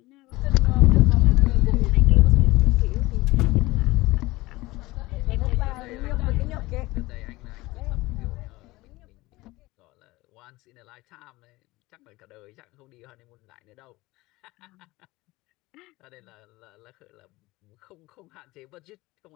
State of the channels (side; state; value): right; quieter; 20.2 dB